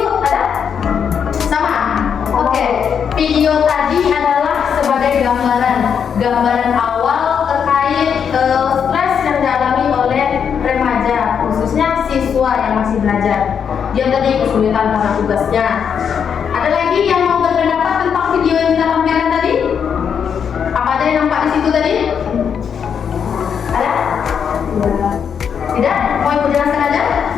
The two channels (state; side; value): quieter; right; 7.4 dB